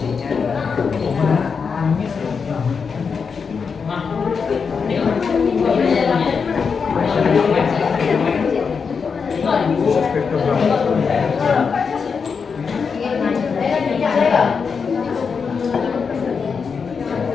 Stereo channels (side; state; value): right; quieter; 5.7 dB